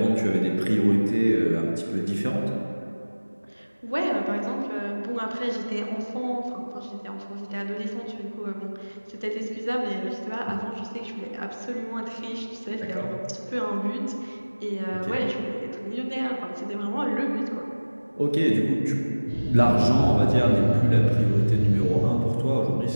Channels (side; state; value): both; inverted; correlation -1.00